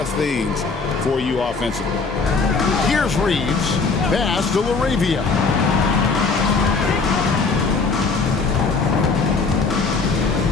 things for you offensively. Here's Reeves. Pass to LaRavia.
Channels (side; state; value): right; quieter; 4.4 dB